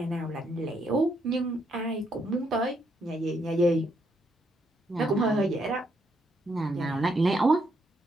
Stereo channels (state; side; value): normal; both; correlation 0.75